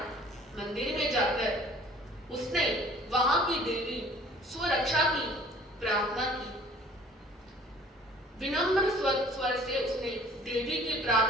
मंदिर में जाकर उसने वहां की देवी स्वरक्षा की प्रार्थना की। विनम्र स्वर से उसने देवी की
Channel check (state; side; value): normal; both; correlation 0.51